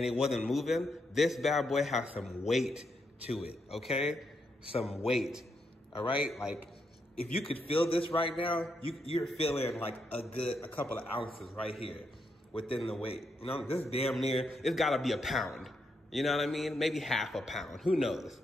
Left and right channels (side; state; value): both; normal; correlation 0.80